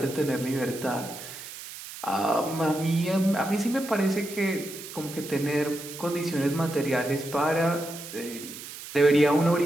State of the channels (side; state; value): right; noise; hiss, 12 dB below the sound